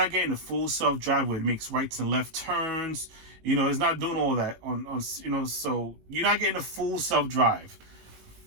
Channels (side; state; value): left; late; 18 ms